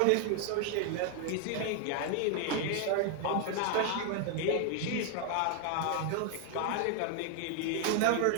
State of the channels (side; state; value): both; different; correlation 0.00